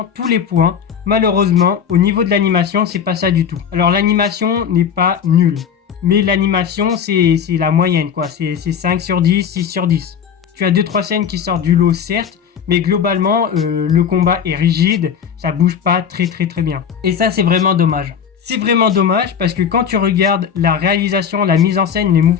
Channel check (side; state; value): right; quieter; 7.6 dB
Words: tous les points. Malheureusement, au niveau de l'animation, c'est pas ça du tout. Alors l'animation n'est pas nulle, mais l'animation c'est la moyenne quoi, c'est 5 sur 10, 6 sur 10. Tu as 2-3 scènes qui sortent du lot certes, mais globalement le combat est rigide, ça bouge pas très bien. Et ça c'est vraiment dommage. C'est vraiment dommage parce que quand tu regardes la réalisation, la mise en scène, les